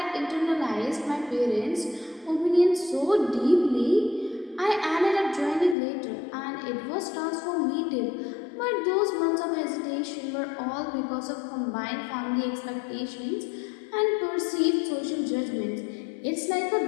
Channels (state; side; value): drops out; right; at 5.8 s